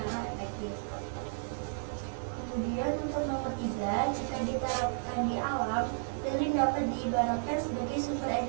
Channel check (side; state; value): left; silent; digital silence